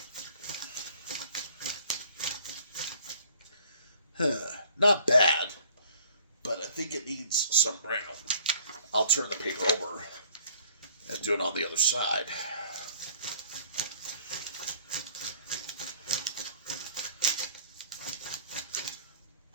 Not bad, but I think it needs some brown. I'll turn the paper over and do it on the other side.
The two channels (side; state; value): both; inverted; correlation -0.55